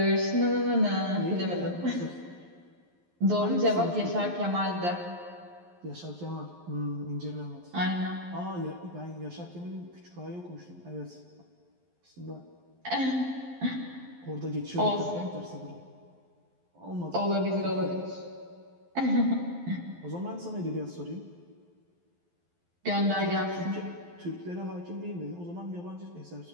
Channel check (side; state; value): left; late; 11 ms